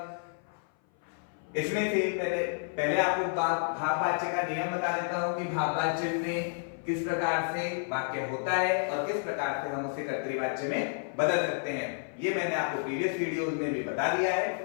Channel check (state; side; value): silent; right; 56 dB below the other